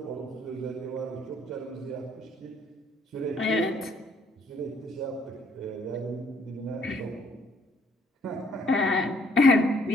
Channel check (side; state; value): both; normal; correlation 0.65